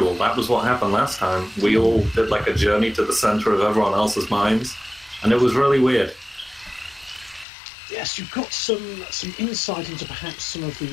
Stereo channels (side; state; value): right; drops out; at 7.5 s